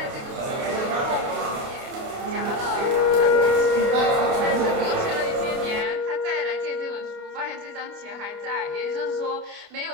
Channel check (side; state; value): left; late; 29 ms